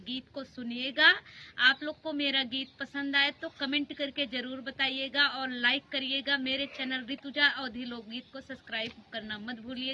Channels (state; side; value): identical; both; correlation 1.00